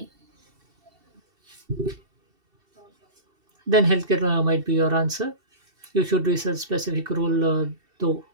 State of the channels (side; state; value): left; late; 2.7 ms